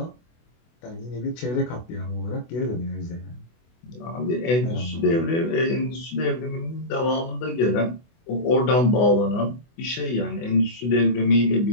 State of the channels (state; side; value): late; right; 24 ms